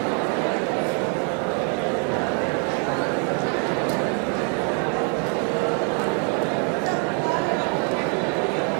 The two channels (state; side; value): quieter; left; 39.3 dB